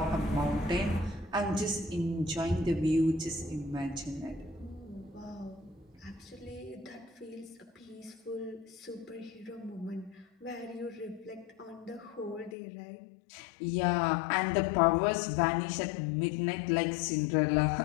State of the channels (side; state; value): right; drops out; at 12.6 s